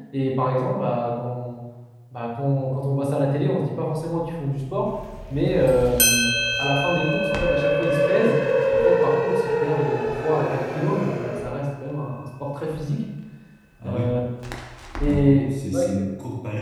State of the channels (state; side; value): identical; both; correlation 1.00